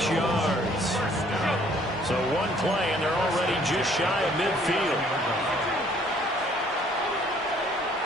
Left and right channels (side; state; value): both; normal; correlation 0.60